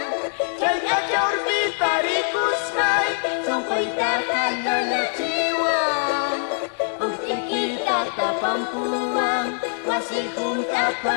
Chay kachor pitarikusay, sampay kakalayachiwang. Bukti kita kapampuang, masih pun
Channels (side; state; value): right; silent; digital silence